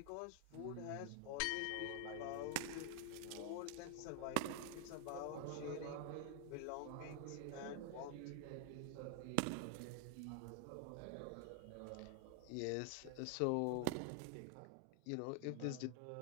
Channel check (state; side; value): different; both; correlation 0.00